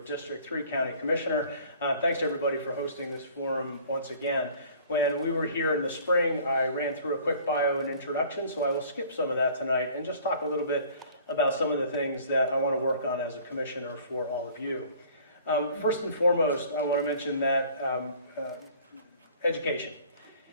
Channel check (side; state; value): both; inverted; correlation -0.50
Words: 3 County Commissioner. Thanks to everybody for hosting this forum once again. When we were here in the spring, I ran through a quick bio and introduction, so I will skip some of that tonight and just talk a little bit about some of the things that I want to work on as a commissioner for all of you. First and foremost, I want to mention that education.